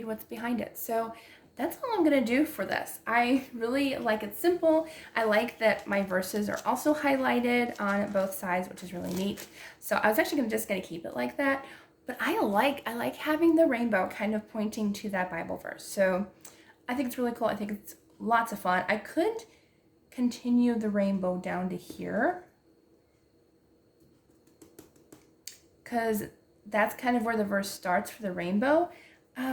what's behind it. So that's all I'm gonna do for this. I really like it simple. I like that my verses are also highlighted on both sides, which is really neat. So I was actually just gonna keep it like that, but I like having the rainbow kind of pointing to that Bible verse. So I think it's really cool. I think it's lots of fun. I could continue the rainbow down to here, because that's kind of where the verse starts for the rainbow.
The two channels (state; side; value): identical; both; correlation 1.00